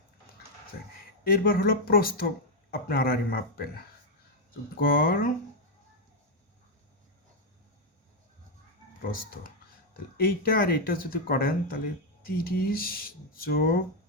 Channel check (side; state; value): both; normal; correlation 0.01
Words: এরবার হলো প্রস্থ, আপনি আড়াআড়ি মাপবেন, গড় প্রস্থ, তাহলে এইটা আর এইটা যদি করেন তাহলে 30 যোগ